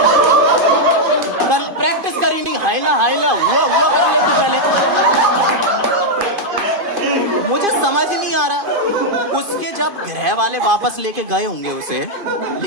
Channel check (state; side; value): late; left; 2.5 ms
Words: कल प्रैक्टिस करी नहीं, हाइला हाइला हुआ कर ले तू पहले। मुझे समझ नहीं आ रहा, उसके जब ग्रह वाले वापस लेके गए होंगे, उसे